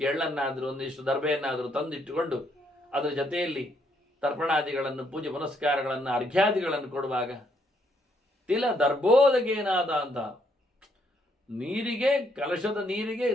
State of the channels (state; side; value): normal; both; correlation 0.72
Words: ಎಳ್ಳನ್ನಾದರೂ ಒಂದಿಷ್ಟು ದರ್ಬೆಯನ್ನಾದರೂ ತಂದಿಟ್ಟುಕೊಂಡು ಅದರ ಜೊತೆಯಲ್ಲಿ ತರ್ಪಣಾದಿಗಳನ್ನು, ಪೂಜೆ ಪುನಸ್ಕಾರಗಳನ್ನು, ಅರ್ಘ್ಯಾದಿಗಳನ್ನು ಕೊಡುವಾಗ ತಿಲ ದರ್ಬೋದಗೇನಾದ ಅಂತ ನೀರಿಗೆ, ಕಲಶದ ನೀರಿಗೆ